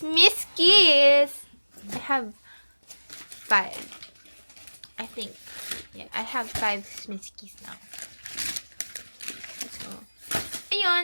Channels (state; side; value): inverted; both; correlation -1.00